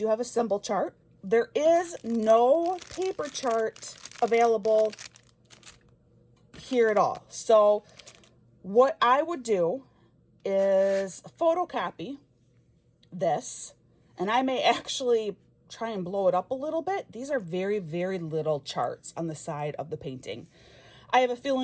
have a symbol chart. There is no paper chart available here at all. So what I would do is photocopy this, and I may actually try and blow it up a little bit. These are very, very little charts on the side of the painting. I have a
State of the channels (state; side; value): identical; both; correlation 1.00